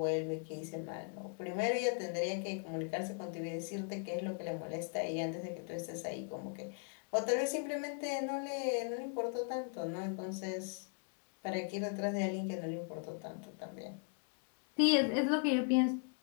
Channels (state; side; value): quieter; right; 38.8 dB